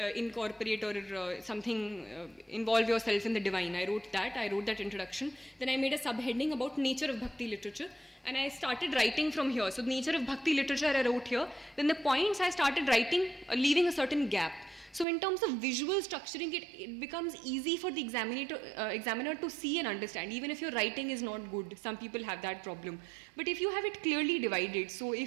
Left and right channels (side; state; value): left; drops out; at 15.1 s